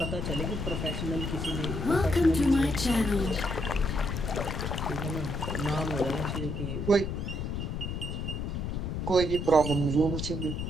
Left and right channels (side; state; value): left; noise; rumble, 3 dB below the sound